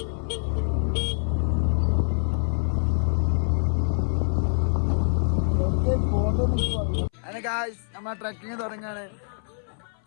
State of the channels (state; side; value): silent; right; 61 dB below the other